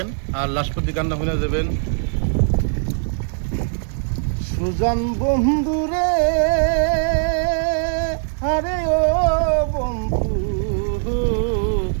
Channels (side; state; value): left; silent; digital silence